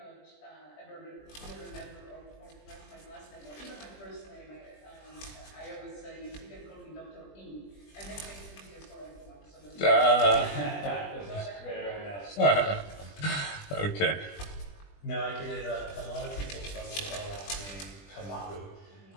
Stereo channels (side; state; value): right; late; 20 ms